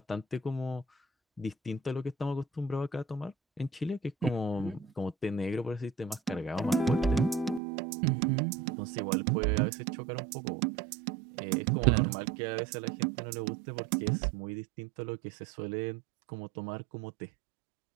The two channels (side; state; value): left; drops out; at 7.6 s